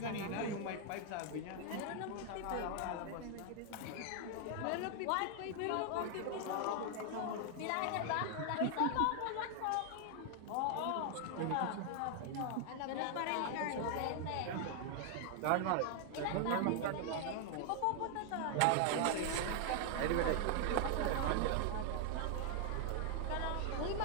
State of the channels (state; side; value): different; both; correlation 0.00